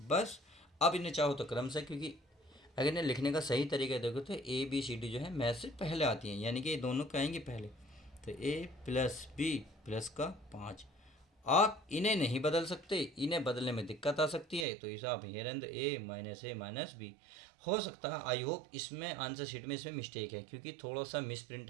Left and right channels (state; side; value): drops out; left; at 14.7 s